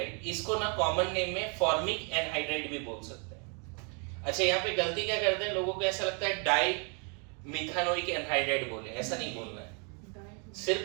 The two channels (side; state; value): left; quieter; 36.8 dB